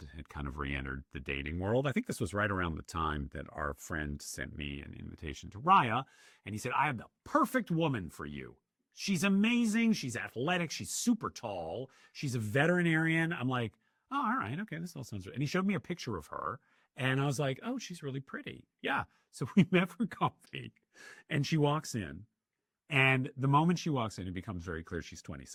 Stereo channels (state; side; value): identical; both; correlation 1.00